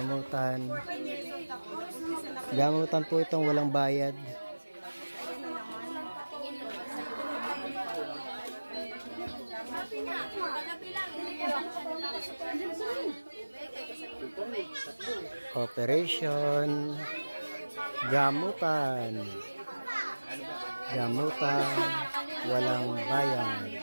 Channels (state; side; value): inverted; both; correlation -1.00